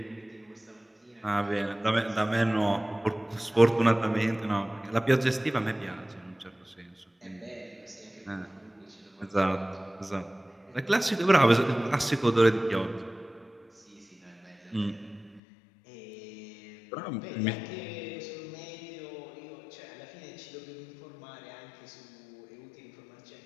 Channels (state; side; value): drops out; right; at 15.4 s